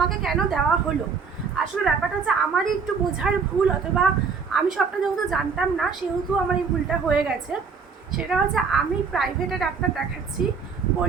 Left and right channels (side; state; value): left; quieter; 5.5 dB